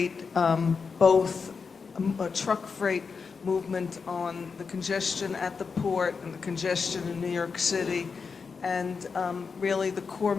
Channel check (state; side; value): quieter; right; 5.3 dB